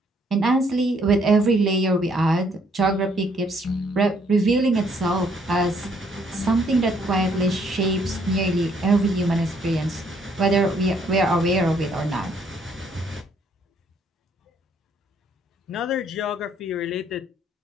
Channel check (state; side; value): normal; both; correlation 0.67